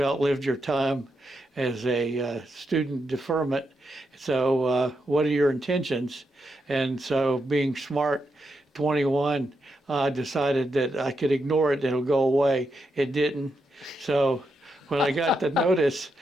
your time as a student deferment, so what are your intentions?" And so, being smart, 21, I decided that I could ignore it and it'll go away. It didn't. So when I got the notice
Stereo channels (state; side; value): normal; both; correlation 0.83